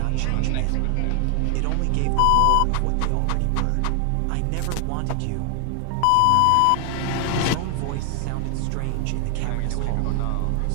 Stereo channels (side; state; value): both; different; correlation 0.00